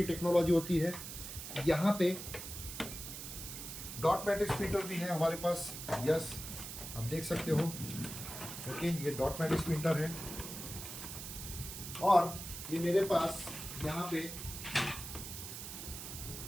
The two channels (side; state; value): right; noise; hiss, 9 dB below the sound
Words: टेक्नोलॉजी होती है। यहाँ पे डॉट मैट्रिक्स प्रिंटर भी है हमारे पास। यस, आप देख सकते हो। ओके, ये डॉट मैट्रिक्स प्रिंटर है। और ये मेरे पास यहाँ पे